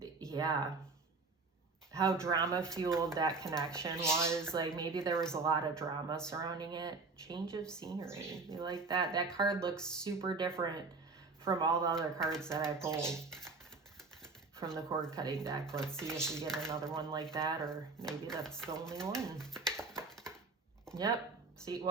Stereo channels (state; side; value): quieter; left; 4.1 dB